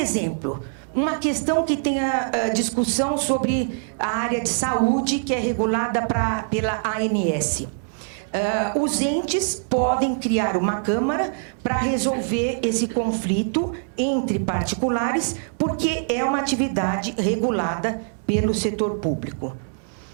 uma questão que tem a discussão sobre a área de saúde, que é regulada pela ANS. Os entes podem criar uma câmara para resolver esse conflito entre particulares, porque é uma atividade regulada pelo setor público.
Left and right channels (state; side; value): silent; left; digital silence